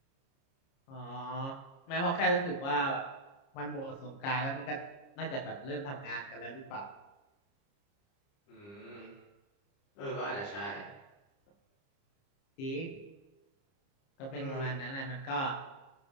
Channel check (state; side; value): late; right; 30 ms